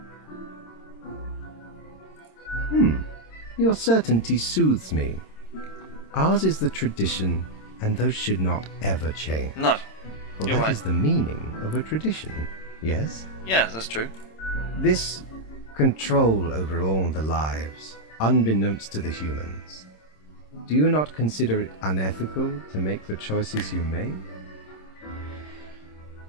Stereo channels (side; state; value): right; late; 26 ms